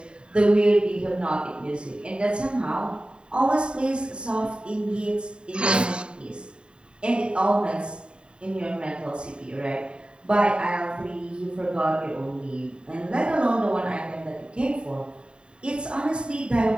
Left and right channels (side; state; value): left; late; 0.052 ms